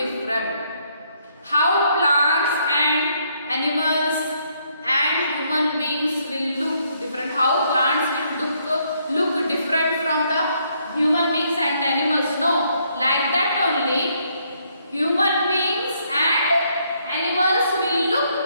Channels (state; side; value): inverted; both; correlation -0.71